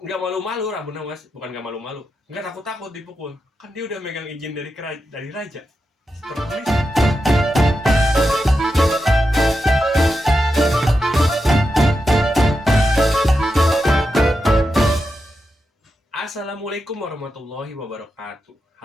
nggak malu-malu Abu Nawas, bukan nggak malu-malu, nggak takut-takut dipukul. Kan dia udah megang izin dari raja. Tertulis. Assalamualaikum warahmatullahi wabarakatuh.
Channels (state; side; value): normal; both; correlation 0.88